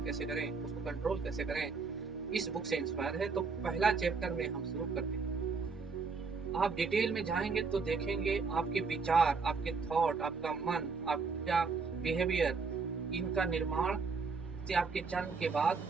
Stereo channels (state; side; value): quieter; left; 4.8 dB